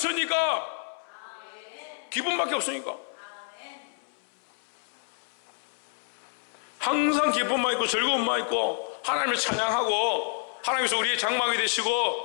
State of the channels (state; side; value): silent; right; 59 dB below the other